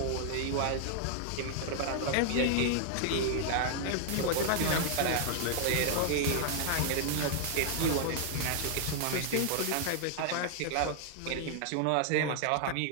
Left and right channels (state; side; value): different; both; correlation 0.00